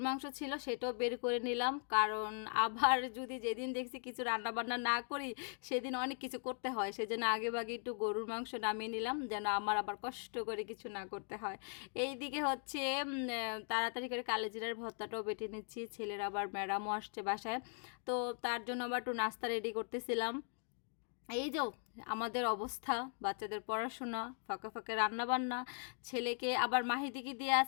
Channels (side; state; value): right; silent; 51 dB below the other